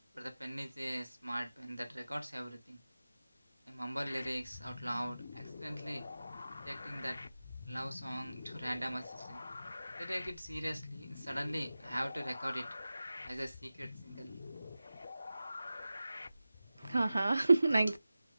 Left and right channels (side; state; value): both; inverted; correlation -0.96